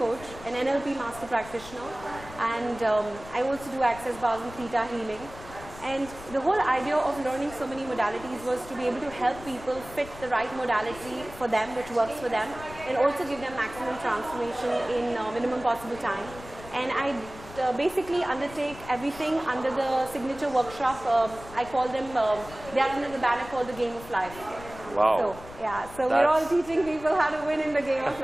an NLP master practitioner, and I also do access bars and theta healing. And the whole idea of learning so many modalities was to be able to help people fit the right modality for them, which works for them, and also give them maximum transformation in minimum possible time. And I basically undertake everything under the signature workshop. I call them, they are under the banner called the Game of Life. Wow. So, yeah, so we're all teaching people how to win in the game of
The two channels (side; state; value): left; noise; rumble, 16 dB below the sound